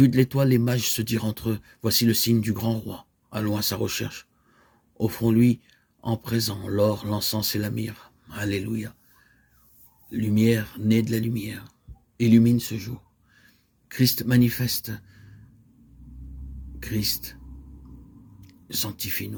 de l'étoile, les mages se dirent entre eux, voici le signe du grand roi. Allons à sa recherche. Offrons-lui en présent l'or, l'encens et la myrrhe. Alléluia. Lumière née de la lumière. Illumine ce jour. Christ manifeste. Christ,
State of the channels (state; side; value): identical; both; correlation 1.00